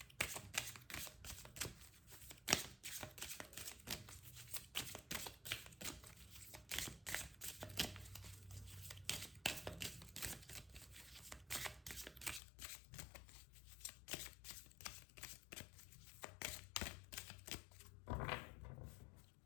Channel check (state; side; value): drops out; right; at 12.4 s